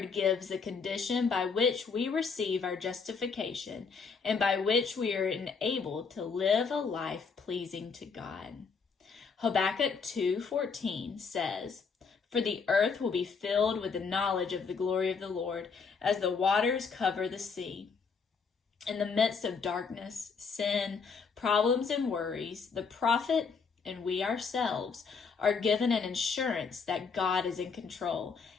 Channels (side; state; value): right; quieter; 5.3 dB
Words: gives the condition by which we receive our justification and by which we are enabled to live a life pleasing to God. Habakkuk 2:14 says, "For the earth will be filled with the knowledge of the glory of the Lord, as the waters cover the sea." In the midst of darkness, sin, problems, and worries, the prophet and we ourselves are given an assurance that God is in control